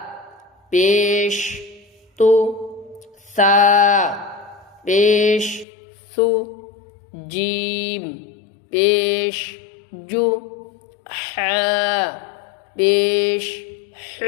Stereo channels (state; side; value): drops out; right; at 5.7 s